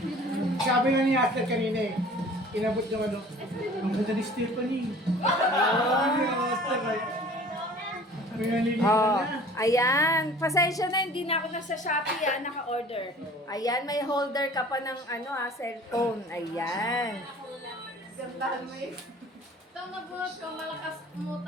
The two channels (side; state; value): both; normal; correlation 0.47